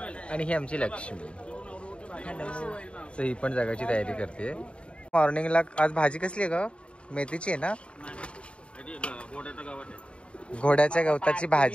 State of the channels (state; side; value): late; right; 0.058 ms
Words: आणि ही आमची लक्ष्मी. सो ही पण जगाची तयारी करते. मॉर्निंगला आज भाजी कसली आहे ग? मेथीची आहे ना? घोड्याच्या गवताची